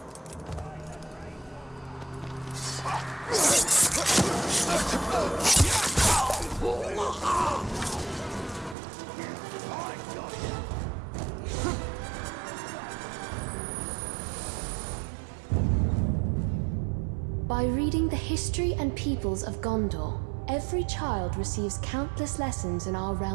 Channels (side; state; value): left; drops out; at 8.8 s